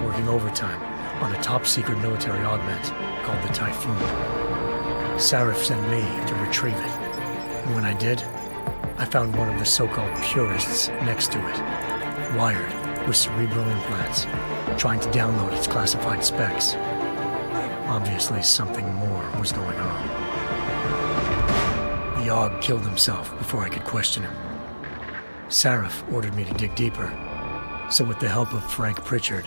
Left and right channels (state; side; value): inverted; both; correlation -1.00